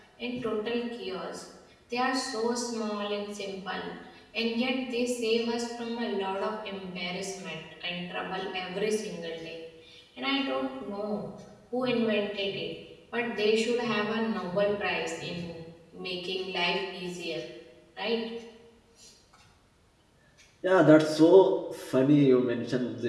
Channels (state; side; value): identical; both; correlation 1.00